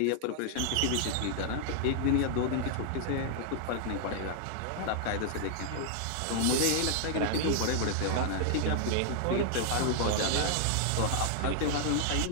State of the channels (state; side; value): different; both; correlation 0.00